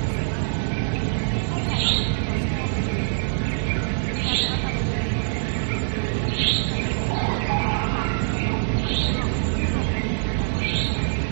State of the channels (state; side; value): silent; left; digital silence